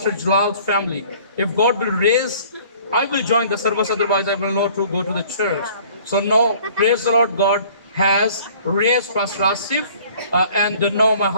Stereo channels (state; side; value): inverted; both; correlation -0.52